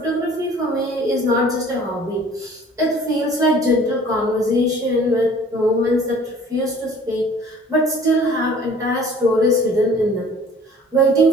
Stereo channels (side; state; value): both; normal; correlation 0.50